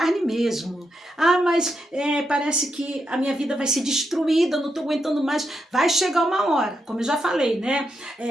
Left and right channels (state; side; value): normal; both; correlation 0.83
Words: mesmo. Ah, mas parece que a minha vida vai ser destruída, não estou aguentando mais. Vai chegar uma hora, como eu já falei, né?